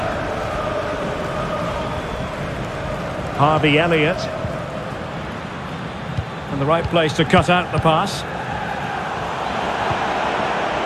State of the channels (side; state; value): both; identical; correlation 1.00